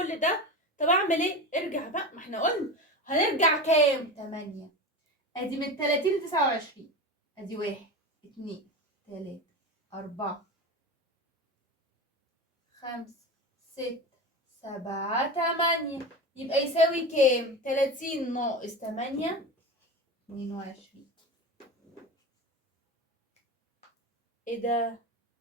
ده؟ طب اعمل ايه؟ ارجع بقى، ما احنا قلنا هنرجع كام؟ 8. ادي من 30 ل 29. ادي 1 2 3 4 5 6 7 8. يبقى يساوي كام؟ 30 ناقص 8 22. ايه ده؟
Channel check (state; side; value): normal; both; correlation 0.26